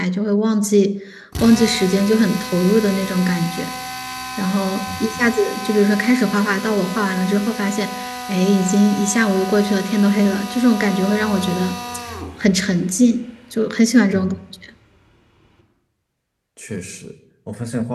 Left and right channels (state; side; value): identical; both; correlation 1.00